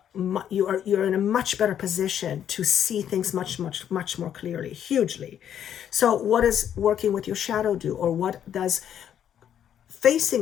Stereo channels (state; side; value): quieter; right; 9.6 dB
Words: in a much better position to see things much more clearly, hugely. So what does working with your shadow do, or what does